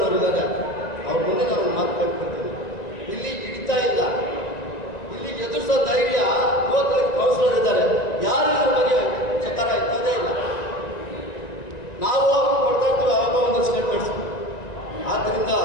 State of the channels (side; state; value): right; late; 1.9 ms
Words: ಇದ್ದಾರೆ, ಅವ್ರ ಮುಂದೆ ನಾನು ಮಾತು ಕಟ್ಕೊಳ್ತೀನಿ. ಇಲ್ಲಿ ಹಿಡಿತಾ ಇಲ್ಲ, ಇಲ್ಲಿ ಎದುರಿಸೋ ಧೈರ್ಯ 35 ಕೌನ್ಸಿಲರ್ ಇದ್ದಾರೆ, ಯಾರು ಇದ್ರ ಬಗ್ಗೆ ಚಕಾರ ಇರ್ತದೇ ಇಲ್ಲ. ನಾವು ಕೊಡ್ತಾ ಇರ್ತೀವಿ ಆವಾಗ ಒಂದು ಸ್ಟೇಟ್ಮೆಂಟ್ಸ್. ಆದ್ದರಿಂದ